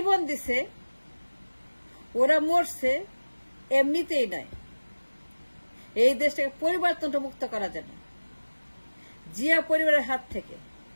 দিছে, ওরা মরছে এমনিতেই নয়, এই দেশটাকে পরিবারতন্ত্র মুক্ত করার জন্য। জিয়া পরিবারের হাত থেকে,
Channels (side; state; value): both; inverted; correlation -1.00